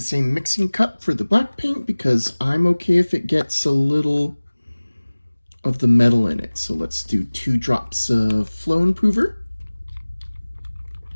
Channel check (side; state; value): both; inverted; correlation -1.00